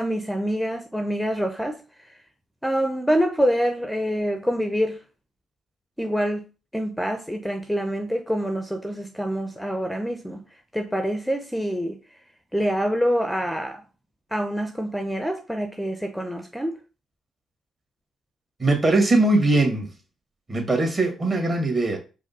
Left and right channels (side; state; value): both; normal; correlation 0.89